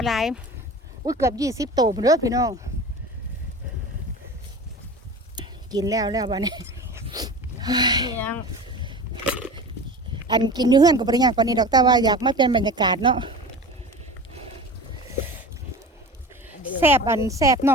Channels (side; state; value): both; normal; correlation 0.35